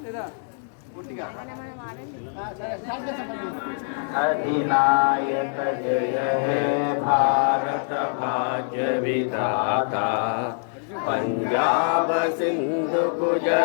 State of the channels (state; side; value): silent; right; digital silence